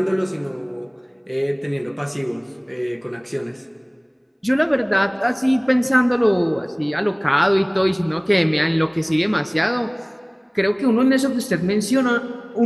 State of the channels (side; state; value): both; identical; correlation 1.00